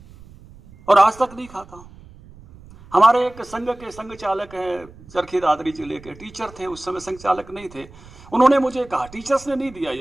और आज तक नहीं खाता हूं। हमारे एक संघ के संघ चालक हैं, चरखी दादरी जिले के, टीचर थे, उस समय संघ चालक नहीं थे। उन्होंने मुझे कहा, टीचर्स ने नहीं दिया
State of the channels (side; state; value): right; noise; rumble, 21 dB below the sound